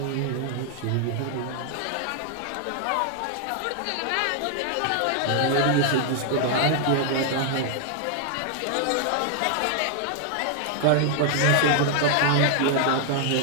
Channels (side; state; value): both; different; correlation 0.00